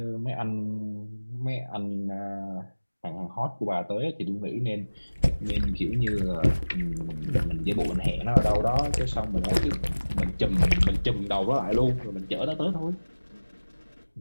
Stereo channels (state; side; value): inverted; both; correlation -1.00